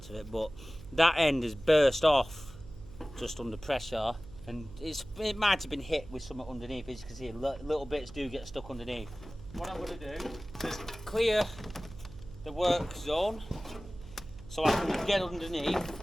of it. But that end is burst off just under pressure, and it might have been hit with something underneath. As you can see, little bits do get stuck underneath. What I'm going to do is clear the work zone so I can get underneath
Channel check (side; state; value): right; noise; hum, 17 dB below the sound